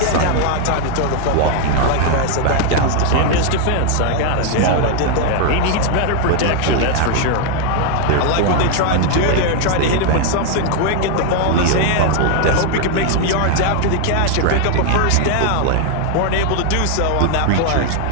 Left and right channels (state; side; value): different; both; correlation 0.01